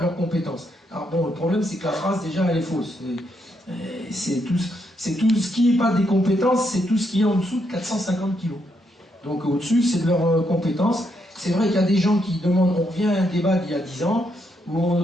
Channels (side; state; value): both; normal; correlation 0.78